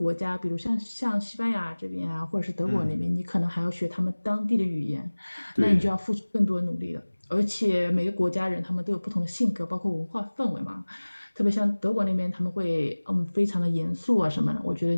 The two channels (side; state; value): both; inverted; correlation -1.00